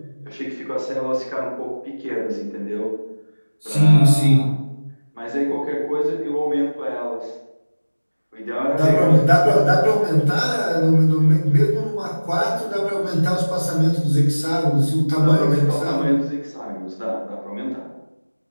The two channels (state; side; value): inverted; both; correlation -1.00